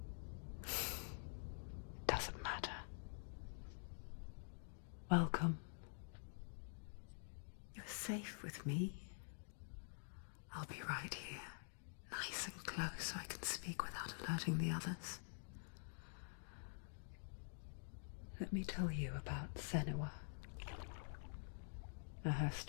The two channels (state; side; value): silent; right; digital silence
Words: Doesn't matter. Welcome. You're safe with me. I'll be right here, nice and close so I can speak without alerting the others. Let me tell you about Senua. Her